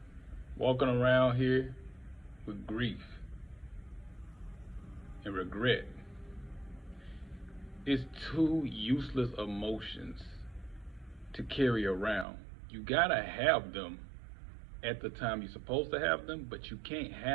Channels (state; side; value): drops out; left; at 12.2 s